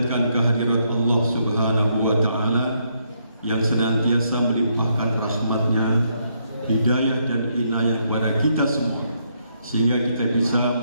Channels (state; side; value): inverted; both; correlation -0.75